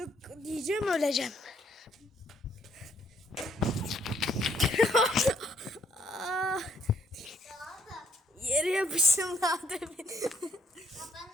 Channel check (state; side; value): normal; both; correlation 0.68